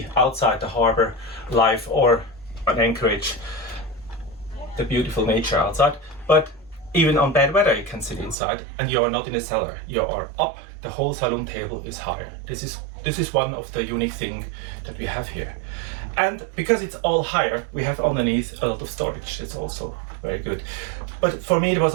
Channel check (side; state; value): left; drops out; at 8.3 s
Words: outside the harbor life, or an anchorage, the beautiful nature outside. But even on bad weather, you can sit inside, and you are not in a cellar. You are up. The whole saloon table is higher. This is one of the unique things that we have here. And because it's all higher, we have underneath a lot of storage. It's also very good. But for me, there